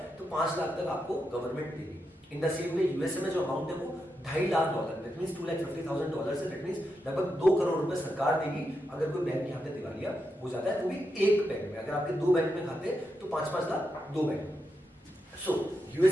तो 5 लाख तक आपको गवर्नमेंट देगी. इन द सेम वे यूएसए में जो अमाउंट है वो $2.5 लाख, दैट मींस $250,000 से, दैट मींस लगभग 2 करोड़ रुपए सरकार देगी अगर कोई बैंक यहाँ पे दिवालिया हो जाता है, वो भी एक बैंक में. अगर आपके 2 बैंक में खाते तो 5-5 लाख 2 बैंक. सो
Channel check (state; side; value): normal; both; correlation 0.85